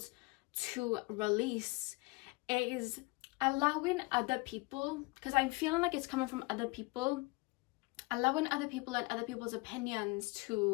to release is allowing other people, because I'm feeling like it's coming from other people, allowing other people and other people's opinions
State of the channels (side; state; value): right; quieter; 25.6 dB